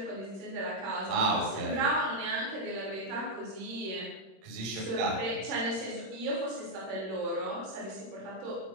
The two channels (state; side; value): late; left; 26 ms